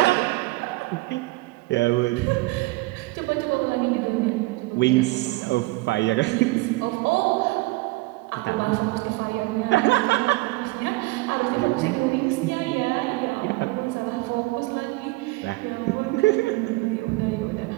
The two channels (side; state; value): left; quieter; 21.9 dB